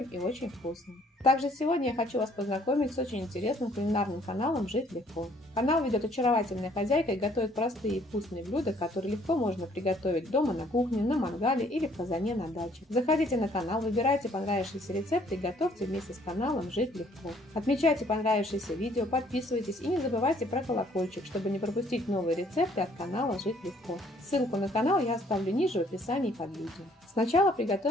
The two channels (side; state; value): both; normal; correlation 0.62